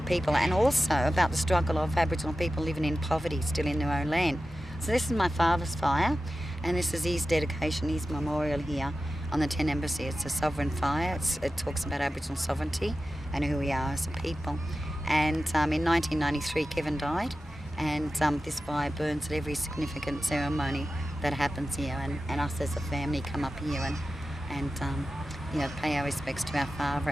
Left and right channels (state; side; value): normal; both; correlation 0.94